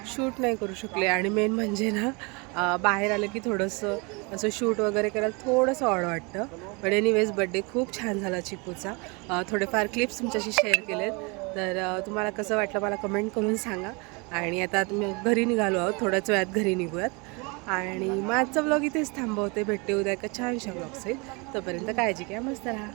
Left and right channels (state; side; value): quieter; left; 29.3 dB